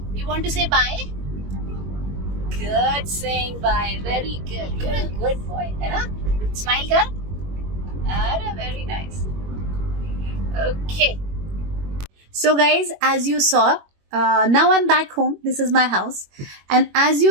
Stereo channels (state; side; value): late; left; 21 ms